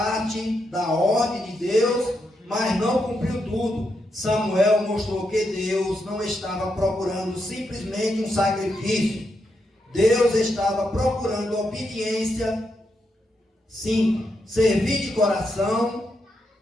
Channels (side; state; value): both; normal; correlation 0.83